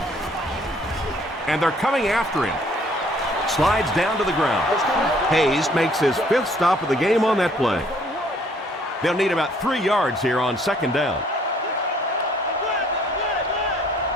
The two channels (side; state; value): both; normal; correlation 0.61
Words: And they're coming after him. Slides down to the ground. Hayes makes his 5th stop of the game on that play. They'll need about 3 yards here on 2nd down.